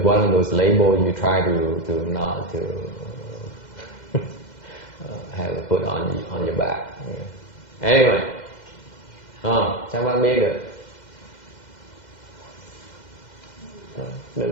one of those labels you try to not to have it put on your back. Yeah. Anyway, chắc bạn biết được.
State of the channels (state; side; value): late; right; 2.1 ms